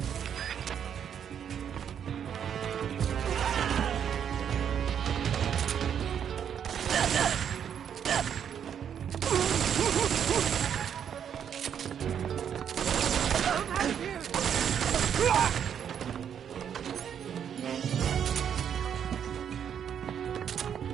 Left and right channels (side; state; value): left; quieter; 8.5 dB